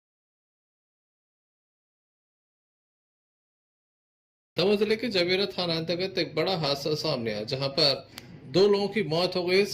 दमोह जिले के जवेरा थाना अंतर्गत एक बड़ा हादसा सामने आया, जहां पर 2 लोगों की मौत हो गई।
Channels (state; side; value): identical; both; correlation 1.00